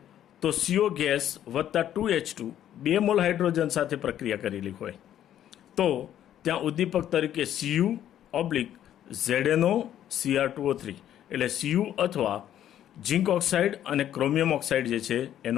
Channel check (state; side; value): quieter; right; 11.1 dB